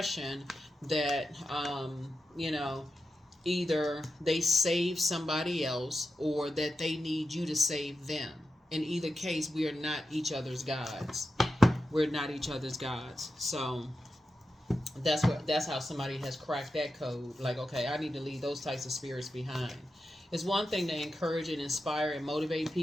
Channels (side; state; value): both; normal; correlation 0.90